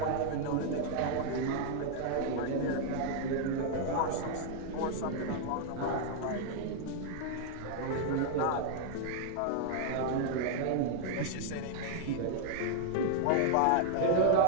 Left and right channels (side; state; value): both; different; correlation 0.00